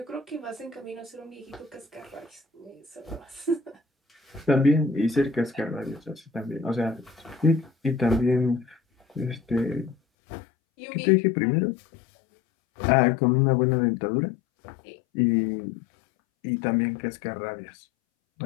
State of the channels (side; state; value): right; drops out; at 10.0 s